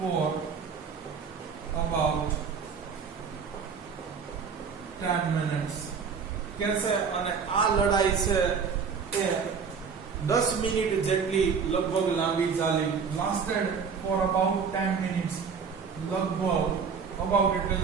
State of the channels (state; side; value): quieter; left; 6.0 dB